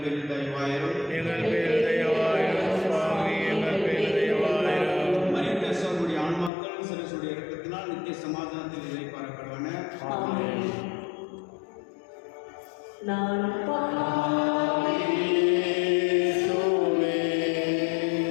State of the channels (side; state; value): right; drops out; at 6.5 s